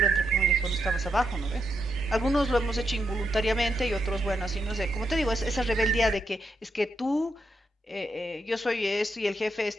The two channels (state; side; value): normal; both; correlation 0.82